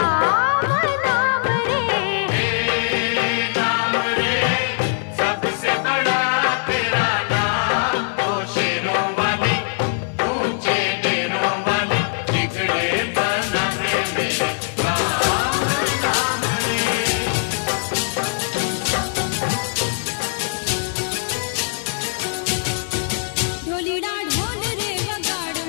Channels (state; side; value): silent; right; 57 dB below the other